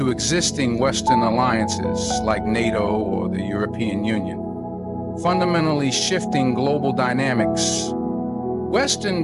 existing Western alliances like NATO or the European Union, fundamentally shifting global dynamics.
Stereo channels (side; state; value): both; identical; correlation 1.00